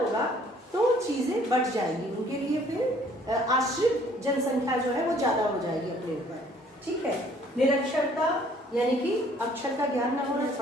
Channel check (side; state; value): both; normal; correlation 0.59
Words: तो चीजें बढ़ जाएंगी, उनके लिए फिर आश्रित जनसंख्या जो है वो ज्यादा हो जाएगी अपने ऊपर, ठीक है। निरक्षरता यानी कि अक्षर का ज्ञान ना होना,